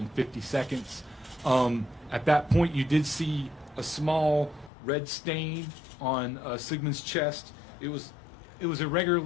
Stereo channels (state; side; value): drops out; right; at 4.7 s